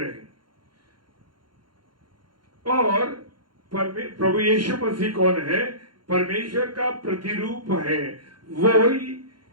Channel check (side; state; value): left; late; 0.72 ms